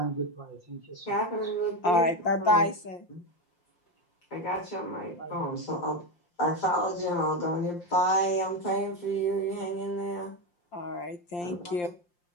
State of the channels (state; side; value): late; right; 5.7 ms